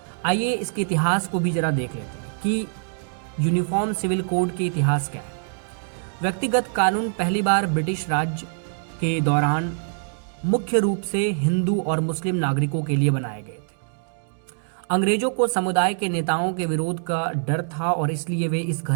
आइए इसके इतिहास को भी जरा देख लेते हैं कि यूनिफॉर्म सिविल कोड के इतिहास क्या है। व्यक्तिगत कानून पहली बार ब्रिटिश राज के दौरान मुख्य रूप से हिंदू और मुस्लिम नागरिकों के लिए बनाए गए थे। अंग्रेजों को समुदाय के नेताओं के विरोध का डर था और इसलिए वे इस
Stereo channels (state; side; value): silent; left; digital silence